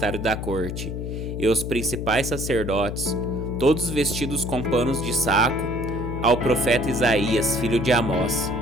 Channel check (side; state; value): left; noise; hum, 5 dB below the sound